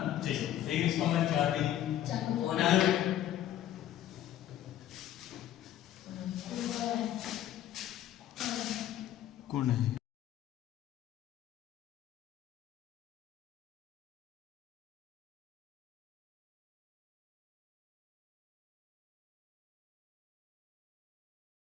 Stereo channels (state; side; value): quieter; right; 11.9 dB